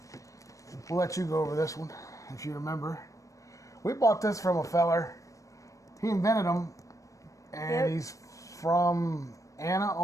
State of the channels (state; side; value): late; right; 0.16 ms